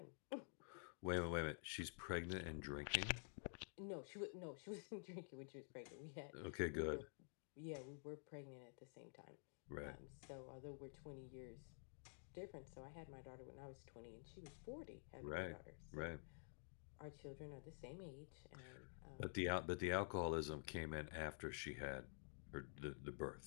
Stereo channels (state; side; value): silent; right; digital silence